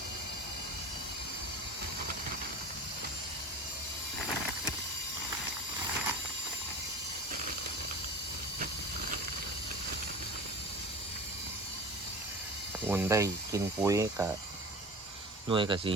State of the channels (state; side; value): normal; both; correlation 0.35